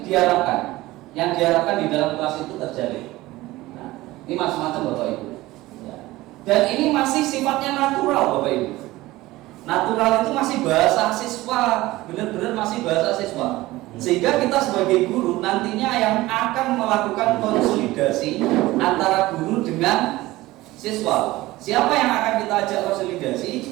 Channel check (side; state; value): left; quieter; 18.3 dB